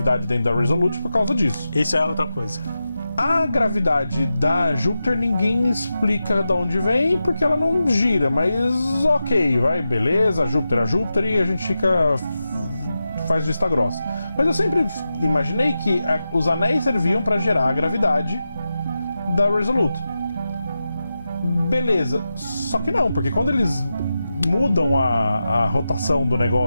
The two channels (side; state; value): both; inverted; correlation -0.91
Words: dentro da Resolute por causa disso. Isso é outra coisa. A gravidade da Júpiter ninguém explica de onde vem, porque ela não gira, mas ok, beleza, a Júpiter e a gente faz vista grossa. Mas eu sempre imaginei que os anéis serviam para gerar a gravidade da Resolute. Beleza, só que não, porque quando eles mudam a rotação do